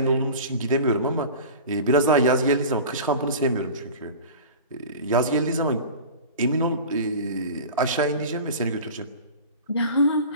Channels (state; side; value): inverted; both; correlation -0.35